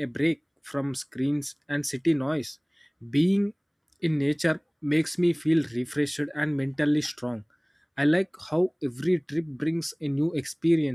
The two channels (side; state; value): both; identical; correlation 1.00